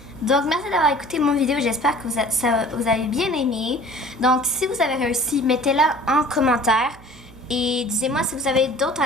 Donc, merci d'avoir écouté mon vidéo. J'espère que vous avez bien aimé. Donc, si vous avez réussi, mettez-la en commentaire. Et dites-moi si vous avez d'autres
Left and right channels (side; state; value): right; noise; hum, 22 dB below the sound